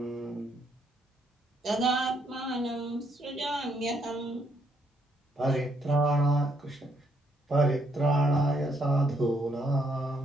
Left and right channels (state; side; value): normal; both; correlation 0.72